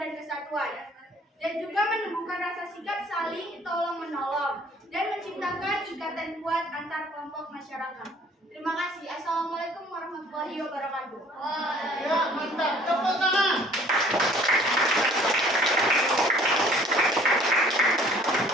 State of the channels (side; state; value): both; normal; correlation 0.55